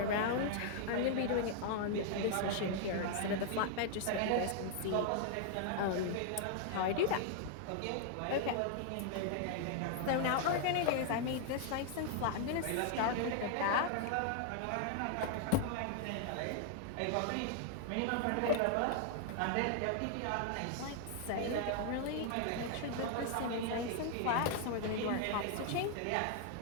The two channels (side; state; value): both; different; correlation 0.00